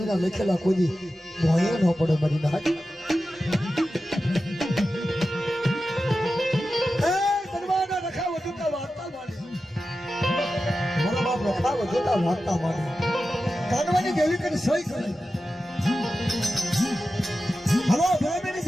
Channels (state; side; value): normal; both; correlation 0.93